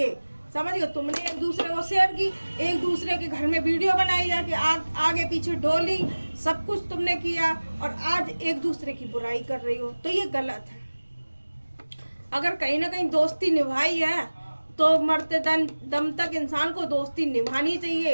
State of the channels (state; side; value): inverted; both; correlation -1.00